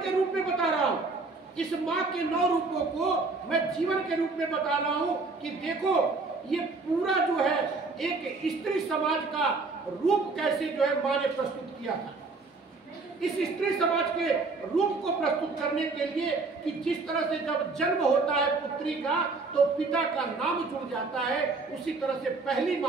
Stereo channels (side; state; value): left; quieter; 3.9 dB